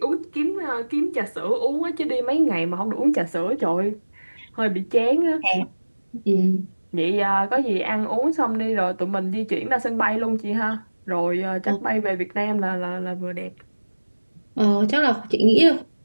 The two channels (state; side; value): inverted; both; correlation -1.00